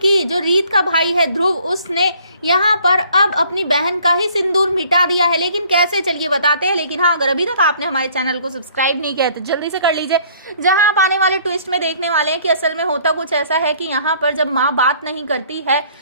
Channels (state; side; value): inverted; both; correlation -0.58